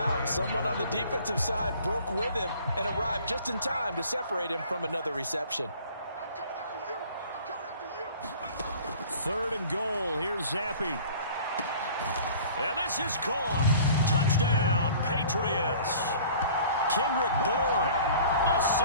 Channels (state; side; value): inverted; both; correlation -0.48